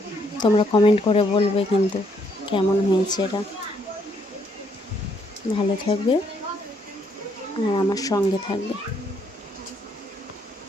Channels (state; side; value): normal; both; correlation 0.71